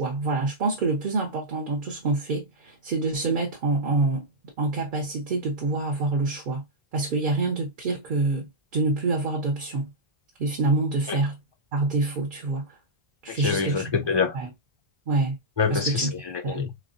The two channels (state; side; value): late; left; 1.2 ms